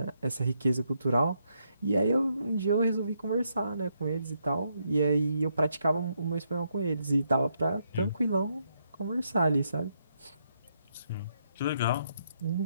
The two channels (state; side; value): inverted; both; correlation -0.77